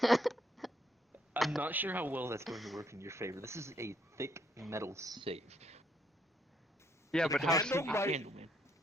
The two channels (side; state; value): both; normal; correlation 0.71